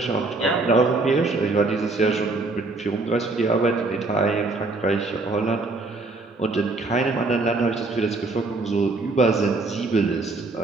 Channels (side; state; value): left; quieter; 3.4 dB